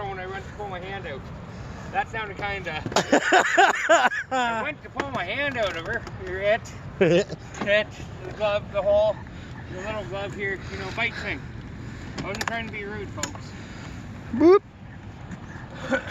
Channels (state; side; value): identical; both; correlation 1.00